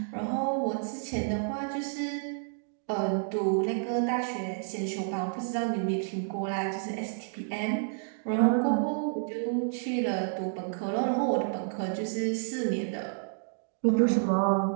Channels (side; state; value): left; silent; digital silence